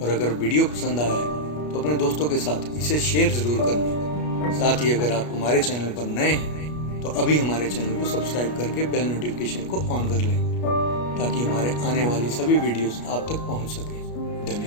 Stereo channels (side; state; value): right; late; 33 ms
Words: अगर वीडियो पसंद आया है तो अपने दोस्तों के साथ इसे शेयर ज़रूर करना। साथ ही अगर आप हमारे चैनल पर नए हैं तो अभी हमारे चैनल को सब्सक्राइब करके बेल नोटिफिकेशन को ऑन कर लें, ताकि हमारे आने वाली सभी वीडियोस आप तक पहुंच सके।